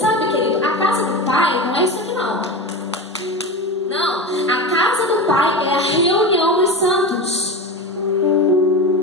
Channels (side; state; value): both; normal; correlation 0.24